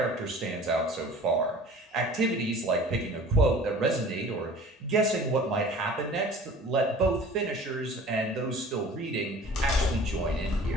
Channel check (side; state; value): both; normal; correlation 0.45